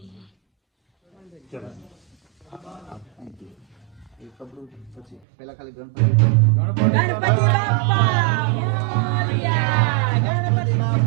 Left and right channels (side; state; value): left; drops out; at 5.2 s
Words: પેલા ખાલી ગણપતિ